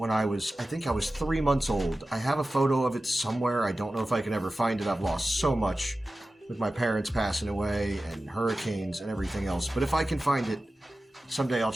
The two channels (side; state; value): both; normal; correlation 0.95